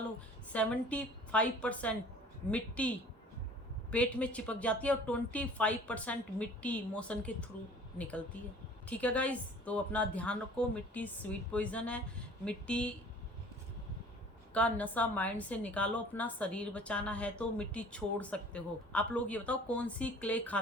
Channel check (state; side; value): normal; both; correlation 0.49